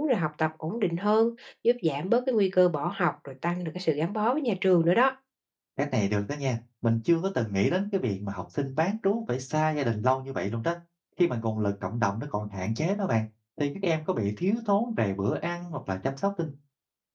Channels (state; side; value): identical; both; correlation 1.00